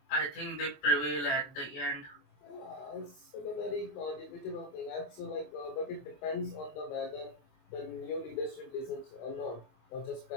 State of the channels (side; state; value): right; late; 24 ms